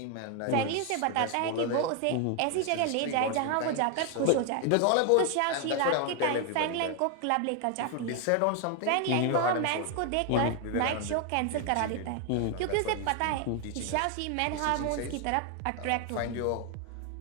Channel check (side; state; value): both; different; correlation 0.01